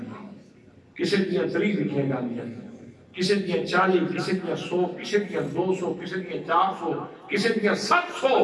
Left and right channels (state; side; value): identical; both; correlation 1.00